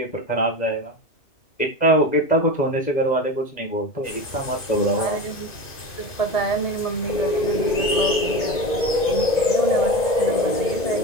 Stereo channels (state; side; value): late; right; 2.5 ms